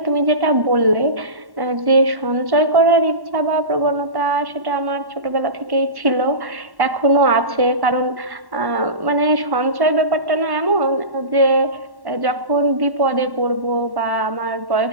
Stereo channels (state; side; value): late; left; 1.1 ms